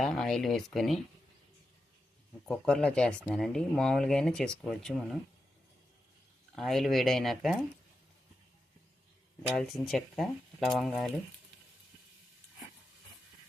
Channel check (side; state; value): both; normal; correlation 0.89